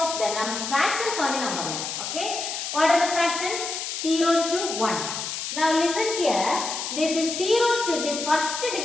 the fractions on the number line. Okay. What are the fractions? 0 to 1. Now listen here. This is 0 to this first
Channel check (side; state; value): left; noise; hiss, 5 dB below the sound